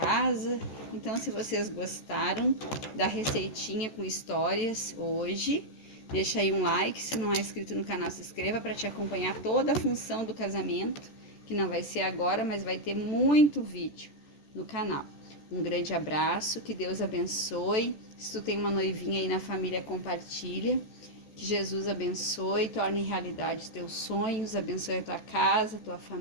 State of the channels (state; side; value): late; right; 14 ms